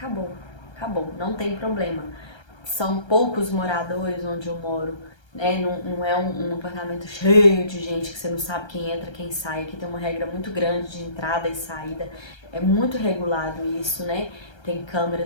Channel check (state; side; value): late; right; 1.3 ms